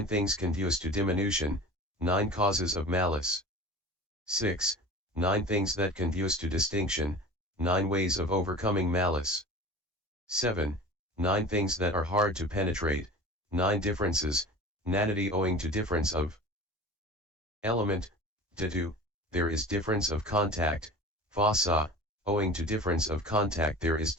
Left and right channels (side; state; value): both; normal; correlation 0.38